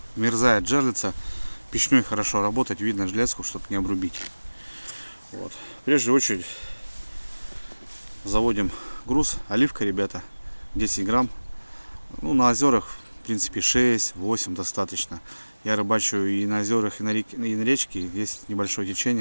мерзает жерлица. Печной хорошо работать, видно железку, чтобы не обрубить. Вот. Прежде очередь заводим груз. Оливка, ребята, 10 грамм. Ну, на озерах, в принципе, 6-8 достаточно. Я рыбачу и на озерах, и на речке. Есть небольшое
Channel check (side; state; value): both; inverted; correlation -1.00